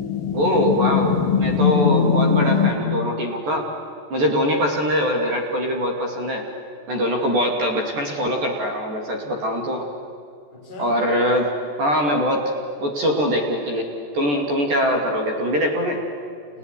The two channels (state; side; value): late; left; 14 ms